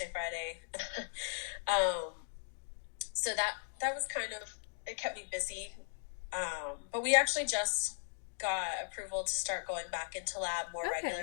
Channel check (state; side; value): silent; right; digital silence